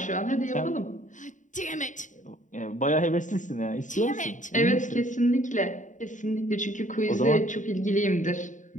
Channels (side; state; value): right; late; 0.36 ms